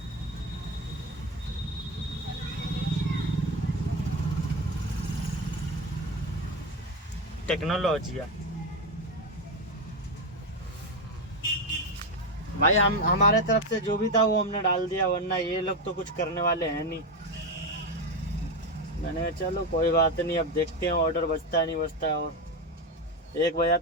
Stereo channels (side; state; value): both; normal; correlation 0.14